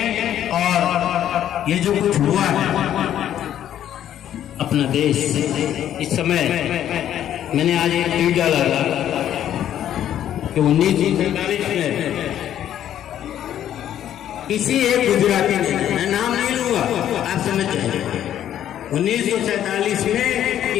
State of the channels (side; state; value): right; quieter; 10.9 dB